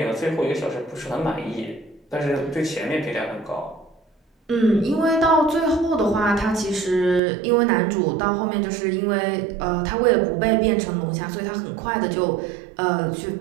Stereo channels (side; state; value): left; drops out; at 7.2 s